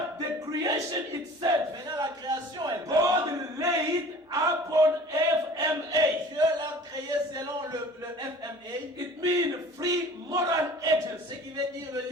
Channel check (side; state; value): both; normal; correlation 0.45